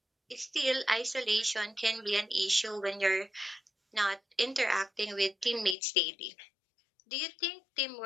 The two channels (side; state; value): right; drops out; at 5.8 s